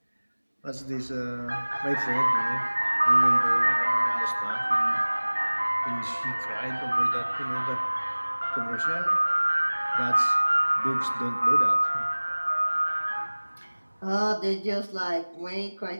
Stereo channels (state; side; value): inverted; both; correlation -1.00